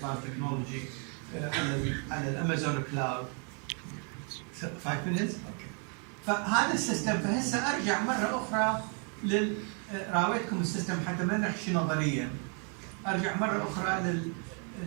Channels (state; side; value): quieter; left; 39.6 dB